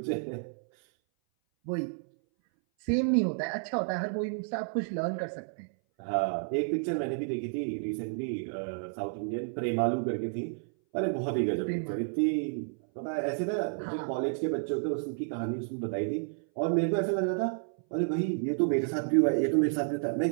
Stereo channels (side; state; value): left; silent; 57 dB below the other